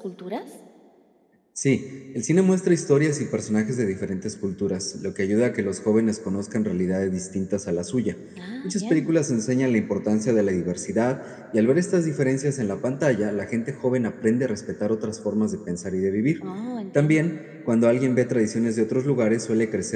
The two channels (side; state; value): both; identical; correlation 1.00